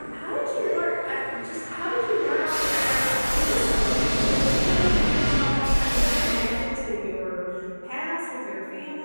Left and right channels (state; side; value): inverted; both; correlation -1.00